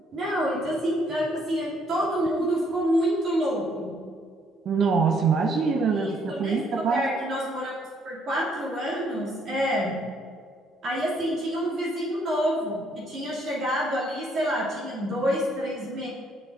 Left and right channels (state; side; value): normal; both; correlation 0.68